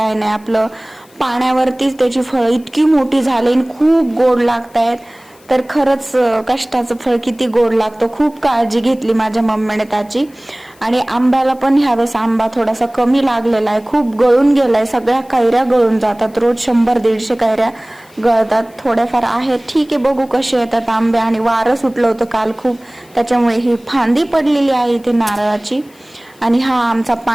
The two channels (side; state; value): left; noise; hiss, 29 dB below the sound